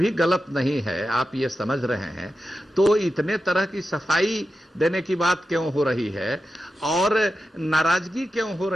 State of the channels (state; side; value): normal; both; correlation 0.91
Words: गलत नहीं है, आप ये समझ रहे हैं, तो इतने तरह की सफाई देने की बात क्यों हो रही है और नाराजगी क्यों हो